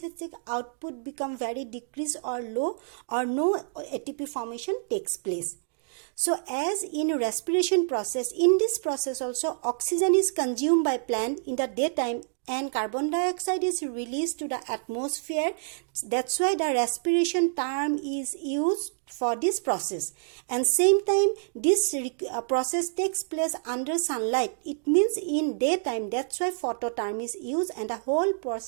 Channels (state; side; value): silent; left; digital silence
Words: output become very decreased or low, or no ATP formation takes place. So as in respiration process, in this process also oxygen is consumed by plant in the daytime and carbon dioxide is released to the atmosphere. That's why the respiration term is used for this process. And same time this process takes place under sunlight. It means in daytime. That's why photo term is used, and the whole